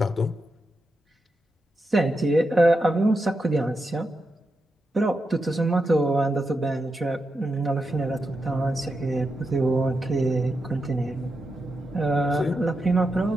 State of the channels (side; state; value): both; normal; correlation 0.86